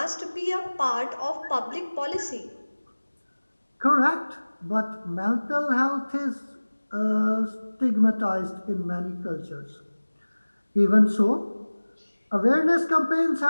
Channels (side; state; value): both; inverted; correlation -1.00